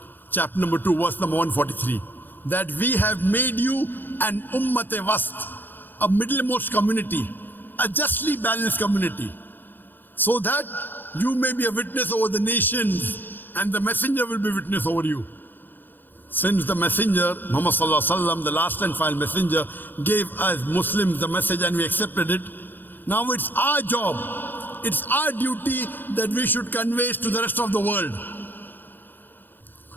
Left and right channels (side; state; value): right; late; 0.091 ms